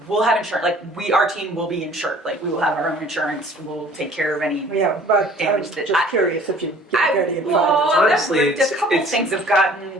We'll have insurance, our team will be insured. We will have our own insurance, we'll take care of any. Yeah, but I'm Damage that- just curious if you get ready and find it. Honestly, a couple it's- things have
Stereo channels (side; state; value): both; normal; correlation 0.52